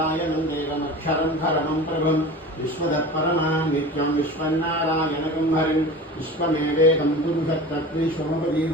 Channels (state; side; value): normal; both; correlation 0.35